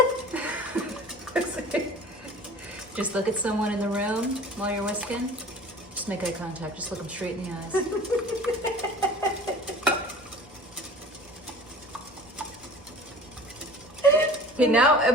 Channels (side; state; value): both; normal; correlation 0.42